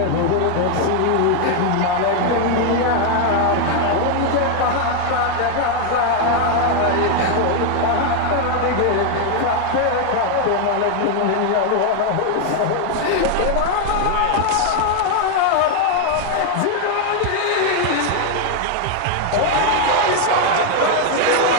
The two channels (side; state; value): both; different; correlation 0.00